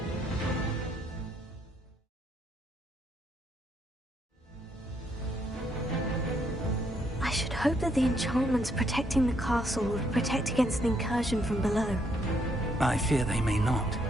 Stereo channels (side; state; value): both; normal; correlation 0.73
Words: I should hope that the enchantments protecting the castle will protect against an incursion from below. I fear they may not.